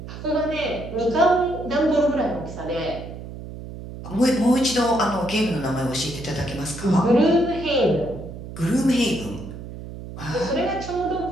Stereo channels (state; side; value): noise; right; hum, 11 dB below the sound